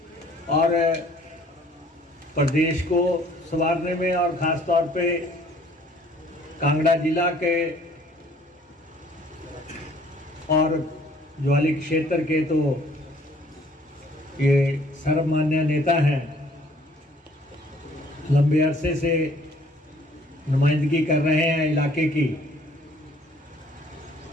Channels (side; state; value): both; normal; correlation 0.58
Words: और प्रदेश को संवारने में, और ख़ास तौर पे कांगड़ा जिला के और ज्वाली क्षेत्र के तो ये सर्वमान्य नेता हैं। लंबे अरसे से नुमाइंदगी कर रहे हैं इलाके की।